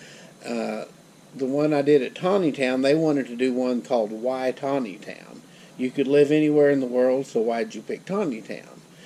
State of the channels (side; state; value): both; identical; correlation 1.00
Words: The one I did at Taneytown, they wanted to do one called Why Taneytown? You could live anywhere in the world, so why'd you pick Taneytown?